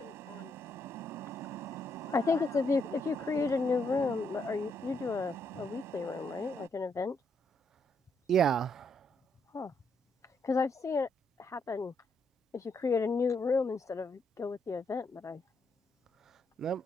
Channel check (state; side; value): normal; both; correlation 0.75